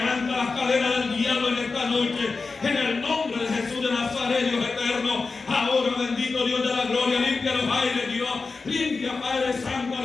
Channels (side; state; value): right; quieter; 4.2 dB